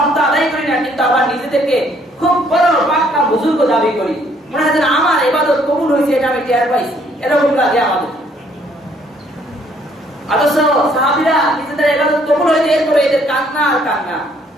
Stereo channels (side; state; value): both; normal; correlation 0.65